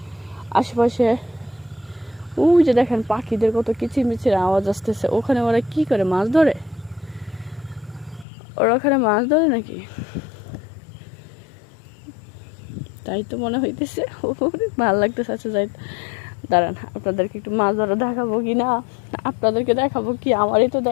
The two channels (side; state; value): right; drops out; at 8.2 s